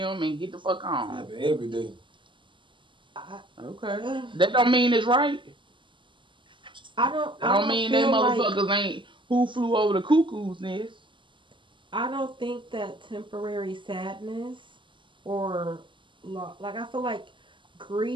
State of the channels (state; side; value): late; left; 0.24 ms